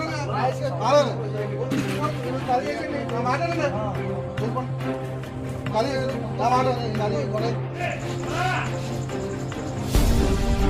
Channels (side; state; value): both; identical; correlation 1.00